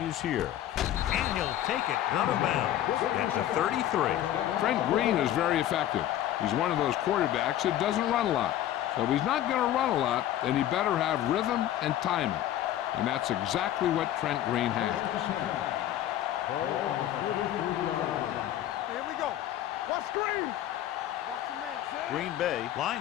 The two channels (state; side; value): quieter; right; 12.5 dB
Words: here. And he'll take it out of bounds at the 33. Trent Green is very effective. He's one of those quarterbacks that doesn't run a lot. So if he's not going to run a lot, then he better have rhythm and timing. And that's exactly what Trent Green has. Ball on the 33-yard line. Here we go. Watch Green. Watch the man. Green Bay